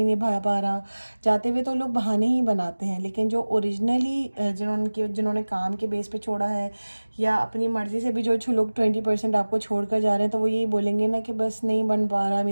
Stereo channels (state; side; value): inverted; both; correlation -1.00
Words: निभा पा रहा. जाते हुए तो लोग बहाने ही बनाते हैं, लेकिन जो ओरिजिनली जिन्होंने काम के बेस पे छोड़ा है या अपनी मर्ज़ी से भी जो लोग 20% आपको छोड़ कर जा रहे हैं, तो वो यही बोलेंगे ना कि बस नहीं बन पा रहा,